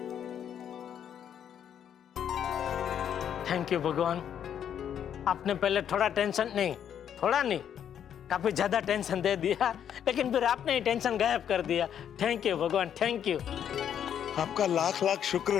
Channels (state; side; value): quieter; right; 9.2 dB